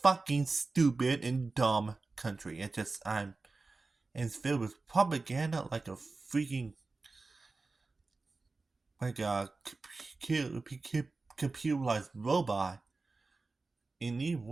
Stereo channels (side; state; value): left; quieter; 3.7 dB